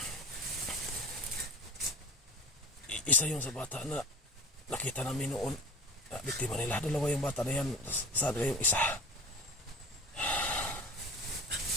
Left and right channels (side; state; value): both; normal; correlation 0.35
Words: Isa yun sa bata na nakita namin noon. Biktima nila. Dalawa yung bata na yan. Saan yung isa?